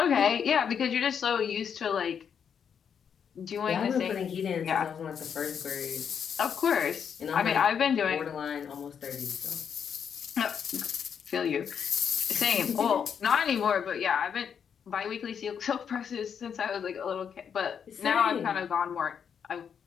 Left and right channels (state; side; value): quieter; right; 7.5 dB